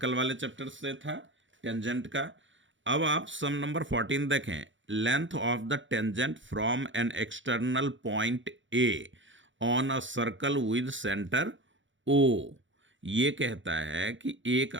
वाले चैप्टर से था, टेंजेंट का। अब आप सम नंबर 14 देखें। Length of the tangent from an external point A on a circle with centre O. ये कहता है कि एक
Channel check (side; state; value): left; late; 0.55 ms